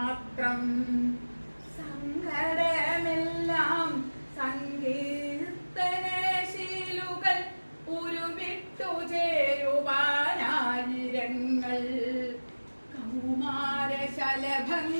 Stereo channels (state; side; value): inverted; both; correlation -1.00